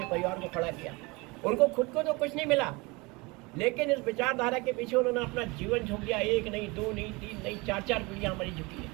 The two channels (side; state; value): left; quieter; 25.4 dB